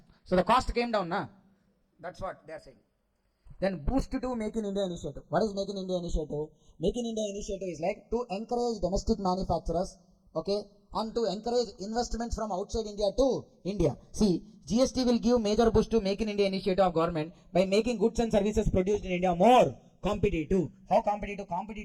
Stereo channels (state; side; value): identical; both; correlation 1.00